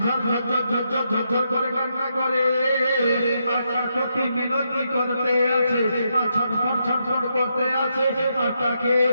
ঝরঝর ঝরঝর ঝরঝর করে কান্না করে। আর কি মিনতি করতে আছে, আর ছটফট করতে আছে, আর তাকে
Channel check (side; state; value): both; inverted; correlation -0.81